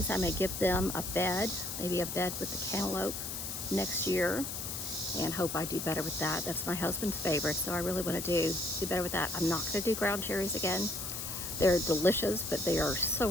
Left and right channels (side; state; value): left; noise; hiss, 5 dB below the sound